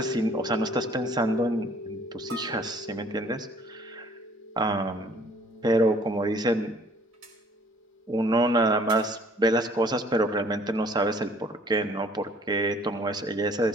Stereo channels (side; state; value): both; normal; correlation 0.57